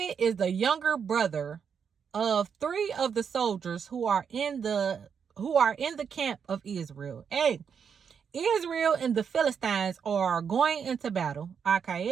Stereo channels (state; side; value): quieter; left; 7.0 dB